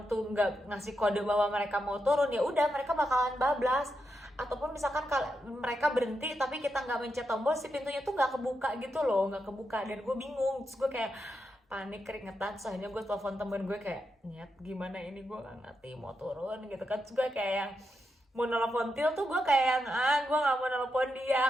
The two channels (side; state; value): both; normal; correlation 0.85